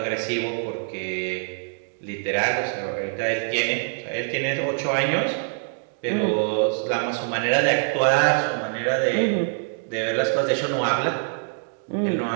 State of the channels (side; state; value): left; silent; 62 dB below the other